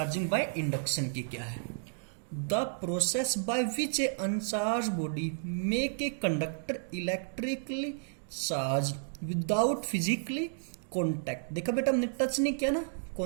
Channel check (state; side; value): silent; left; digital silence